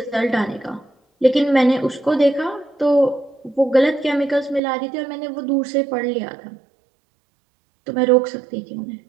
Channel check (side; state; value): left; drops out; at 4.6 s